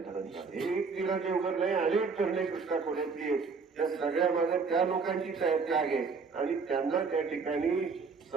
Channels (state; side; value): quieter; left; 4.9 dB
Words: झालं. हे एक नीरा देवगड नाही, अनेक धरणे कृष्णा खोऱ्यातली त्या सगळ्या माझ्या त्या लोकांची त्याग आहे. आणि त्यांना त्या ठिकाणी